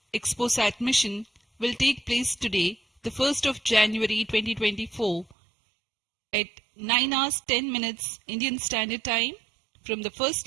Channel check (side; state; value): left; drops out; at 5.4 s